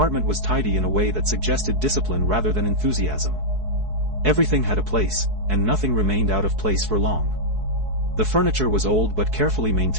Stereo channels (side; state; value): left; late; 4.7 ms